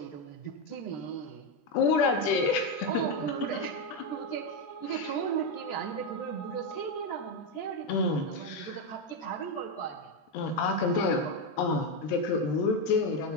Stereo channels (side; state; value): right; late; 13 ms